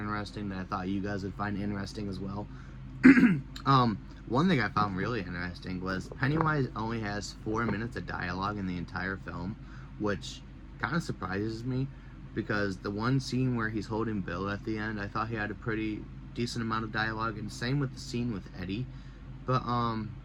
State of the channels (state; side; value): identical; both; correlation 1.00